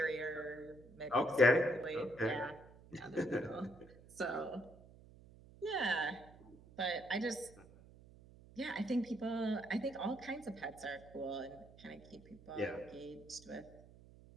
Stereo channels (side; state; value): right; noise; hum, 21 dB below the sound